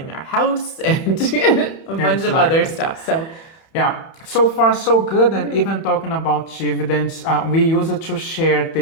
our house and a bunch of other Exactly. stuff. So Yeah, so far so good. And even talking about dividends, we use it to share the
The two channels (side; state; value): right; late; 31 ms